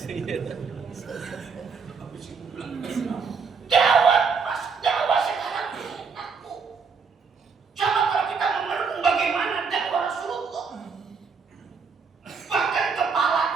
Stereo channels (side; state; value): left; quieter; 5.4 dB